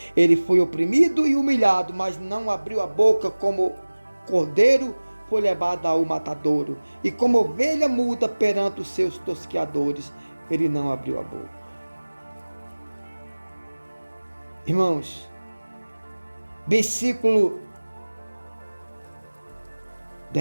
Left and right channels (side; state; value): both; inverted; correlation -1.00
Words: Ele foi oprimido e humilhado, mas não abriu a boca. Como cordeiro foi levado ao matadouro, e como ovelha muda perante os seus tosqueadores, ele não abriu a boca. Irmãos, versículo